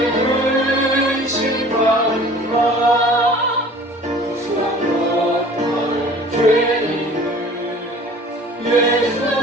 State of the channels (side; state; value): both; normal; correlation 0.47